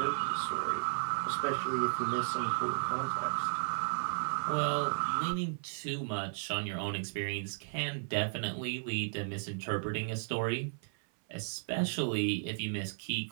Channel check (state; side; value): silent; left; 55 dB below the other